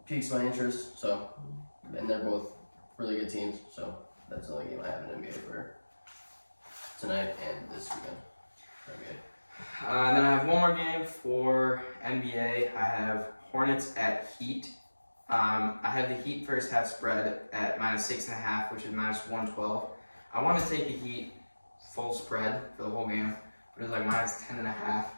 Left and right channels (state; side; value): inverted; both; correlation -1.00